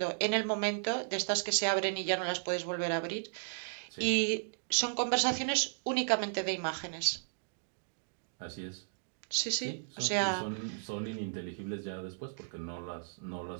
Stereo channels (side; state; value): left; silent; digital silence